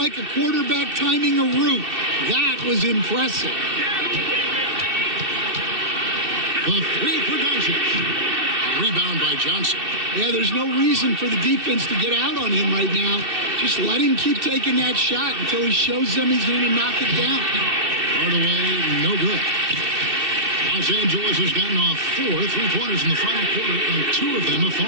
a quarterback timing a route. That was impressive. The three for Doncic. Rebound by Johnson. Yeah, there's no reason for the defense to get out on him right now. Just let him keep taking that shot until he shows them he's going to knock it down. Hardaway, no good. Los Angeles has gotten off 4 3-pointers in the final quarter, and 2 of them have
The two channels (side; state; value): left; late; 2.7 ms